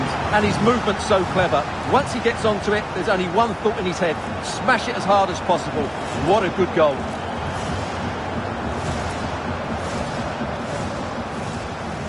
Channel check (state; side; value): identical; both; correlation 1.00